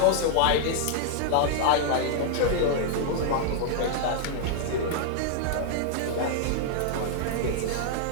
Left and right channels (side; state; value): both; different; correlation -0.01